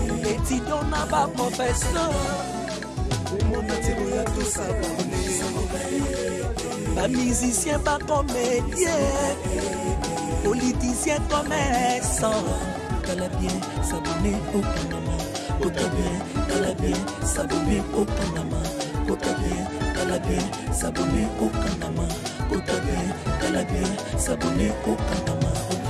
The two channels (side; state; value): both; identical; correlation 1.00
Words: Étudiant n'a pas professeur. Mon attiro à tout s'abonner. Pas musicien, pas comédien. Politicien, commerçant. T'as bien s'abonner au Panama. T'as bien s'abonner au Panama. T'as bien s'abonner au Panama. T'as bien s'abonner au Panama.